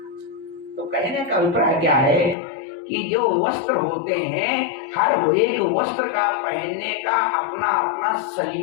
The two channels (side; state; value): right; drops out; at 2.4 s